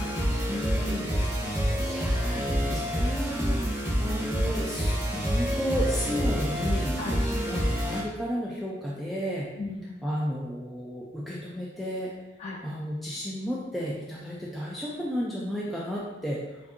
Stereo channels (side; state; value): both; normal; correlation 0.82